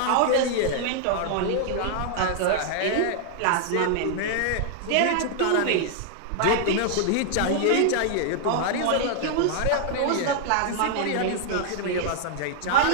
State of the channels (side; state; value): both; different; correlation -0.01